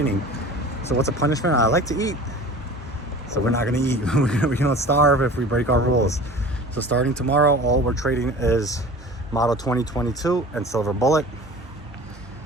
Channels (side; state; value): both; normal; correlation 0.40